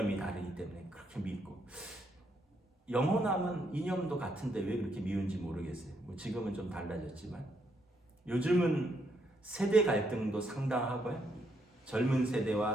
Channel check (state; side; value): normal; both; correlation 0.75